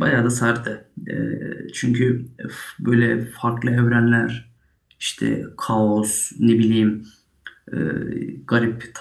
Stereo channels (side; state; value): both; identical; correlation 1.00